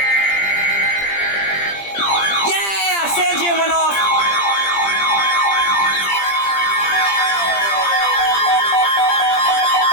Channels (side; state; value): right; late; 20 ms